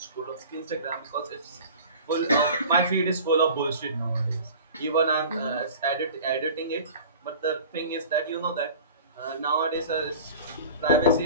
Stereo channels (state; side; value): inverted; both; correlation -0.41